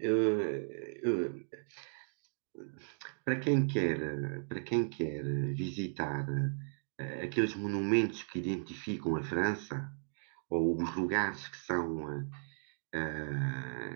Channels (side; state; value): left; silent; digital silence